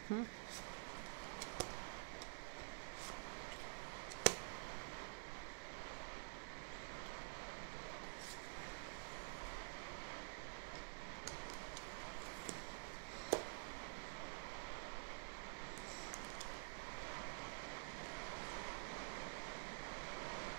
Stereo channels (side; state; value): left; silent; digital silence